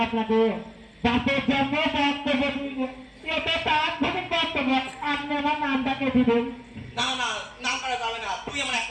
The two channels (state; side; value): identical; both; correlation 1.00